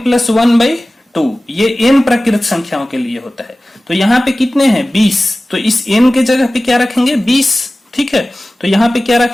प्लस 1/2, ये n प्राकृत संख्याओं के लिए होता है। तो यहाँ पे कितने हैं, 20, तो इस n के जगह पे क्या रखेंगे, 20, ठीक है। तो यहाँ पे क्या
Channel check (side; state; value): both; normal; correlation 0.97